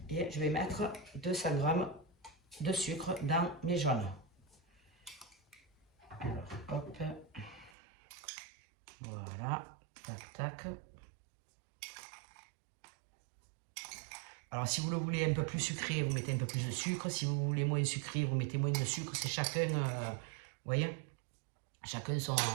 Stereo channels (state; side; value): drops out; left; at 7.7 s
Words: Et je vais mettre 200 grammes de sucre dans mes jaunes. Alors, hop, voilà, tac, tac. Alors, si vous le voulez un peu plus sucré, vous mettez un peu plus de sucre. Si vous voulez moins sucré, vous mettez moins de sucre. C'est chacun, vous voyez, chacun